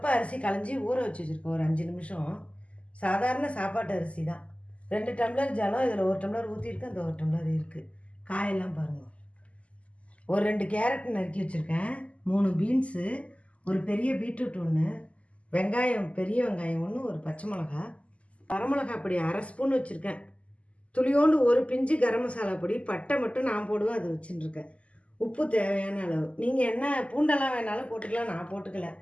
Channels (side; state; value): right; late; 0.061 ms